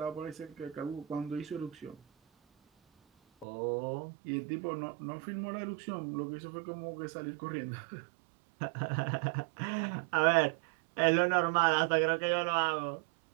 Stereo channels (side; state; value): left; drops out; at 3.5 s